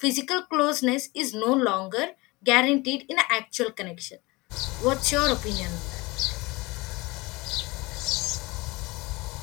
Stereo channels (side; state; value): right; quieter; 23.7 dB